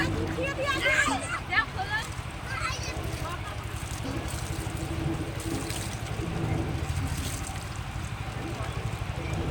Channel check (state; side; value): identical; both; correlation 1.00